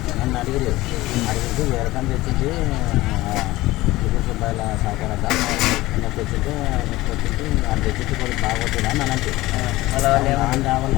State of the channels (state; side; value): quieter; right; 18.4 dB